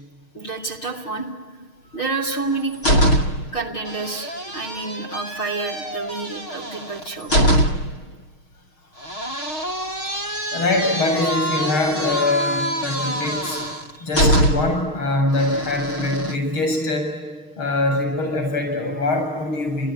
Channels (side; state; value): right; late; 6.5 ms